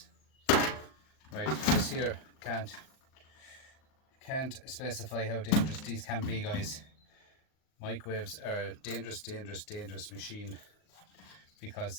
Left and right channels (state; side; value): late; right; 38 ms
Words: Right, this here can't specify how dangerous these can be, guys. Microwaves are dangerous machine, because